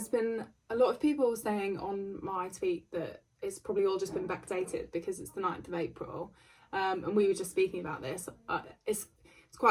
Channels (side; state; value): both; identical; correlation 1.00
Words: been a lot of people saying on my tweet that it's probably all just been backdated because it's the 9th of April. And we were just speaking about this. It's